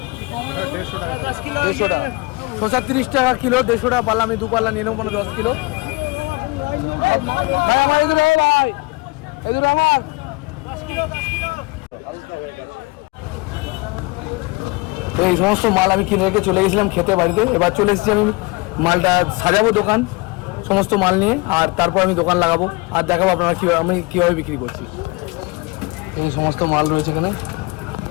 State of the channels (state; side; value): quieter; right; 25.1 dB